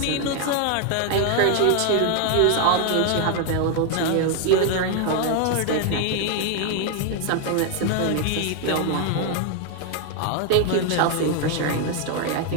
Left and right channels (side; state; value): both; different; correlation 0.00